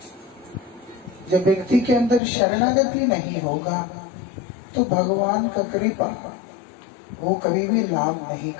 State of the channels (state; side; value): drops out; right; at 2.2 s